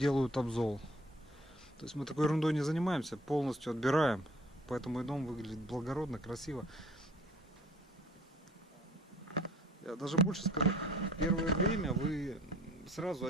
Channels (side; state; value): both; normal; correlation 0.54